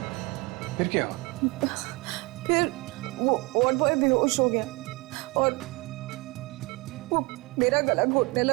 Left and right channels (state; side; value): quieter; left; 26.1 dB